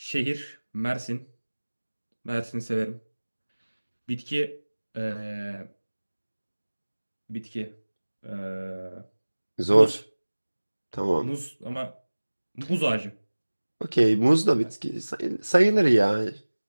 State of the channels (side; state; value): both; inverted; correlation -1.00